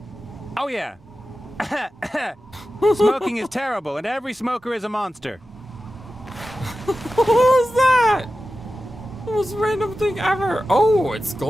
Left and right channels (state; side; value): normal; both; correlation 0.93